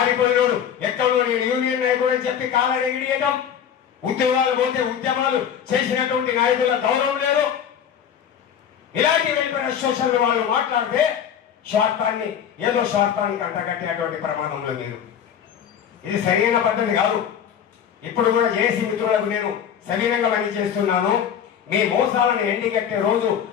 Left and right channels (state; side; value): quieter; right; 8.6 dB